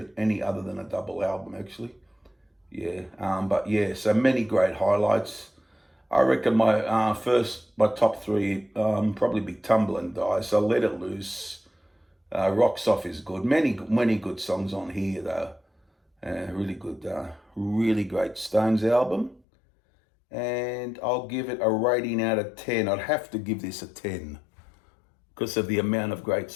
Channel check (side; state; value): right; drops out; at 19.4 s